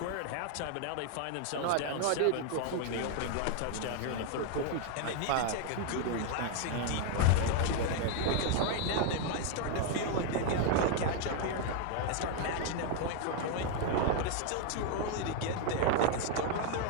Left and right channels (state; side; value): different; both; correlation 0.00